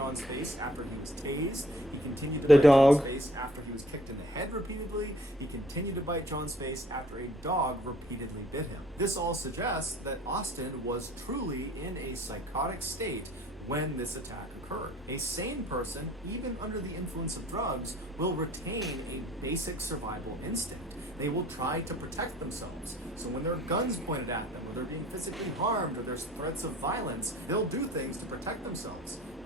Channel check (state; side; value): normal; both; correlation 0.55